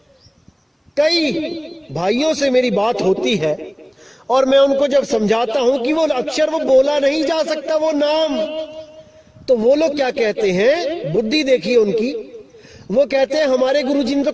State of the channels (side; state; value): both; identical; correlation 1.00